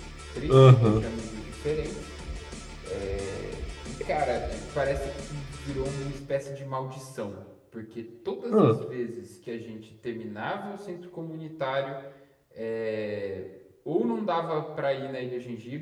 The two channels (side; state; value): both; identical; correlation 1.00